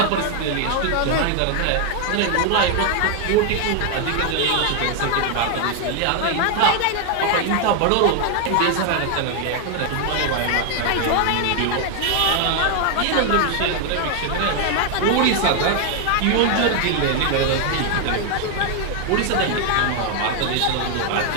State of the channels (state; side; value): different; both; correlation 0.00